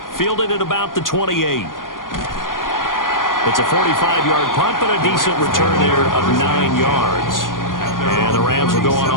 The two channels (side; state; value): right; late; 0.90 ms